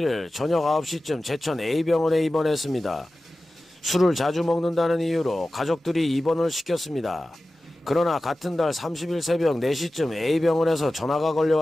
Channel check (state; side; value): normal; both; correlation 0.95